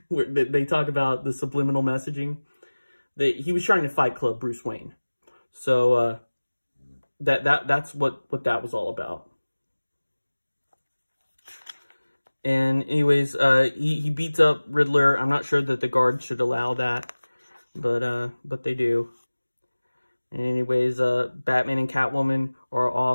where they talk about the subliminal messaging. He was trying to Fight Club Bruce Wayne. So that's what that was all about. And anyways, he beats up Riddler. I'm not sure that the guards should allow that, but they do. And anyways, Batman and Catwoman are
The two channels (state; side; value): inverted; both; correlation -1.00